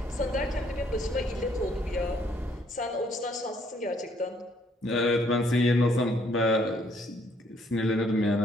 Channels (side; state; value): both; normal; correlation 0.67